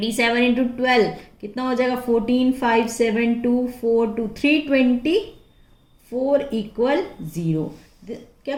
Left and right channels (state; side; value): identical; both; correlation 1.00